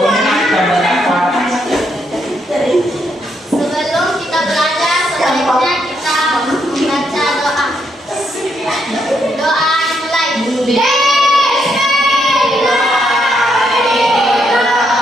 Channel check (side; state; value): both; normal; correlation 0.77